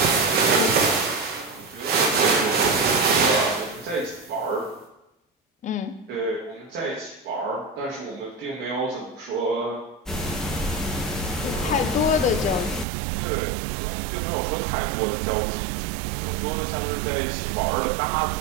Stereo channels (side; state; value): left; drops out; at 12.9 s